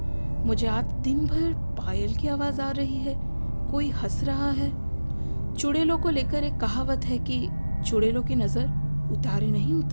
मुझे आज दिन भर पायल की आवाज़ आ रही है, कोई हंस रहा है। चुड़ैलों को लेकर एक कहावत है कि चुड़ैलों की नज़र उतारे नहीं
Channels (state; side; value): inverted; both; correlation -1.00